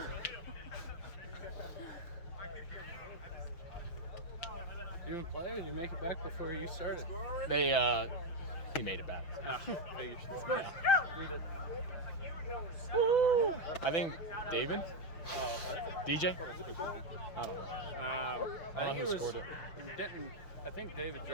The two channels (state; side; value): late; right; 5.7 ms